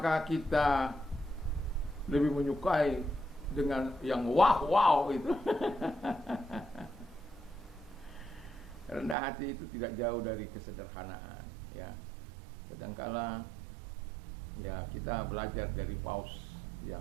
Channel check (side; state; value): left; drops out; at 9.2 s